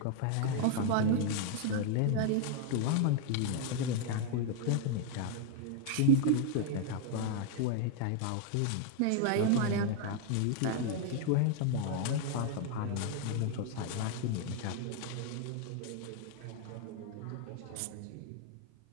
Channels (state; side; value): different; both; correlation 0.00